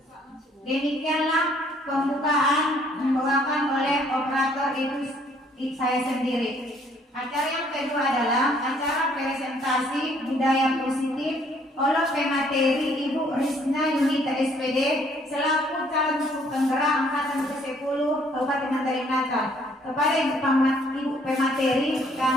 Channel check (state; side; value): normal; both; correlation 0.63